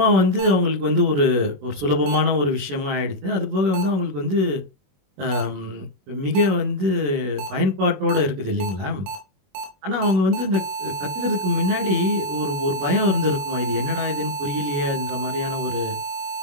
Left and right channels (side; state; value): left; late; 21 ms